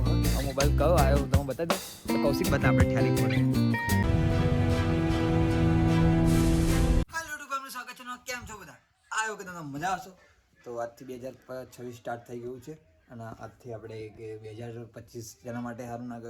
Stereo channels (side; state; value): both; identical; correlation 1.00